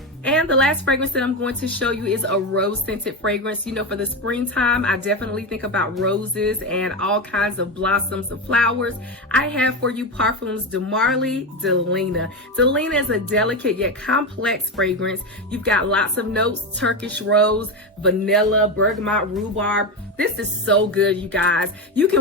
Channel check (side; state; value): both; normal; correlation 0.15